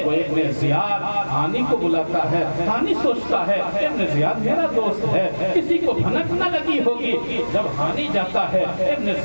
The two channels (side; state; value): both; inverted; correlation -1.00